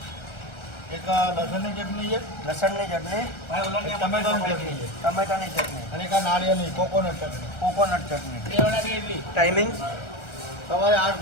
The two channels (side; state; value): right; late; 1.3 ms